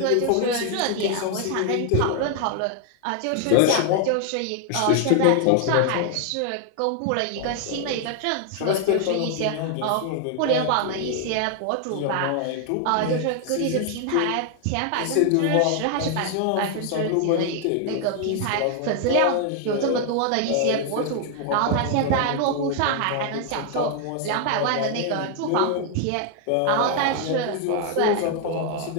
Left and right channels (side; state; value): both; different; correlation 0.00